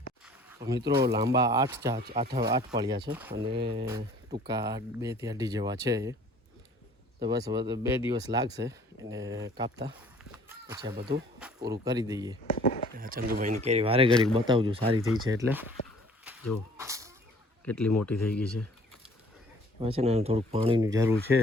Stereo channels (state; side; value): normal; both; correlation 0.54